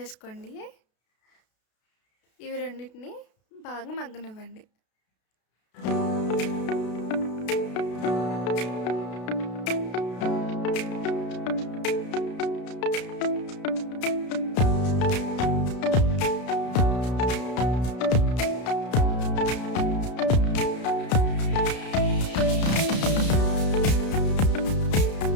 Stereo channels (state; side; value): late; right; 32 ms